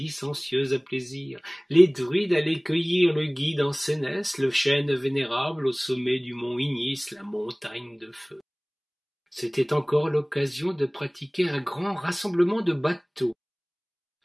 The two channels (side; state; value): both; identical; correlation 1.00